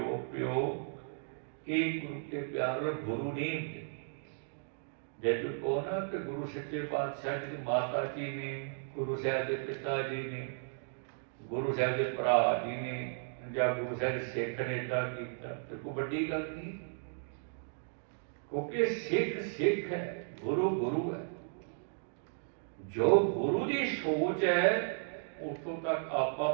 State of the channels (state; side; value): silent; left; digital silence